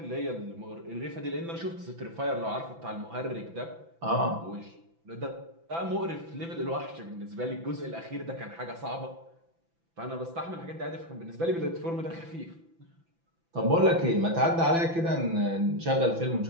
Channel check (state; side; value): late; left; 6.0 ms